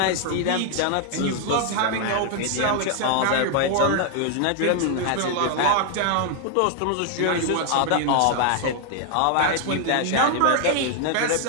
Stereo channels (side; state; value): both; different; correlation 0.00